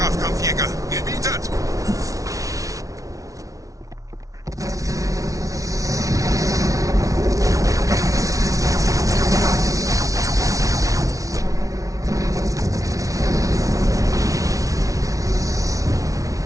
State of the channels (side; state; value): left; late; 0.17 ms